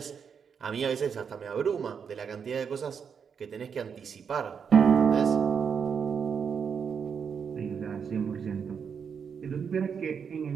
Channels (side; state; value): left; quieter; 6.7 dB